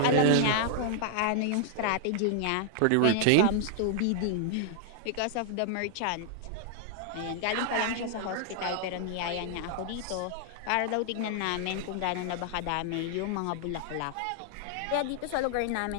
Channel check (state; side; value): different; both; correlation 0.00